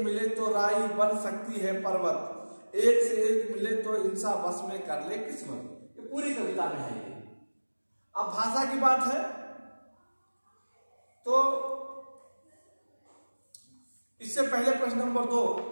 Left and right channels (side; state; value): both; inverted; correlation -1.00